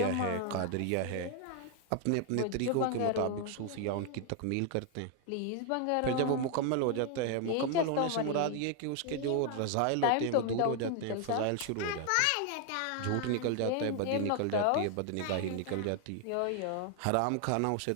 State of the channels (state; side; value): different; both; correlation 0.00